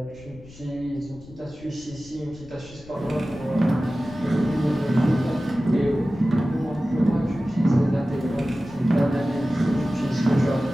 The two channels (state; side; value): noise; left; rumble, 20 dB below the sound